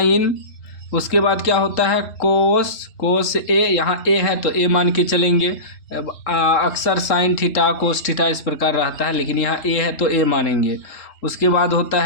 उसके बाद क्या होता है कोस ए, यहाँ ए है तो ए मान के चलेंगे। अक्सर साइन थीटा कोस थीटा इस प्रकार रहता है, लेकिन यहाँ ए है तो ए मानेंगे। उसके बाद होता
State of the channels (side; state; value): right; late; 3.7 ms